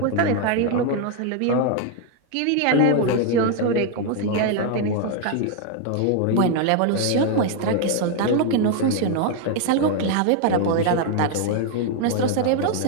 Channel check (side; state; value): both; different; correlation 0.01